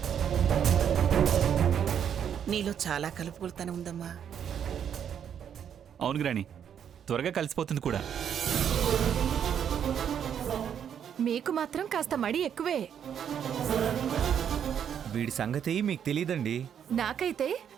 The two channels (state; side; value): quieter; left; 8.6 dB